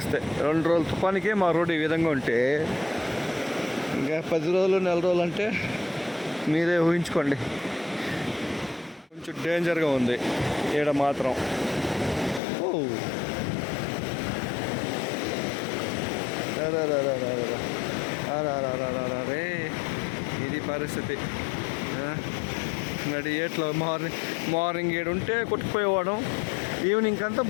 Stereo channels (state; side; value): drops out; right; at 12.4 s